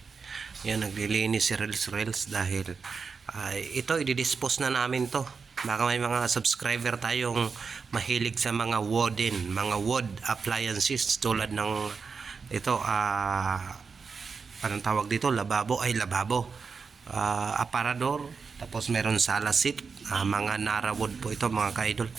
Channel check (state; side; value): quieter; left; 5.2 dB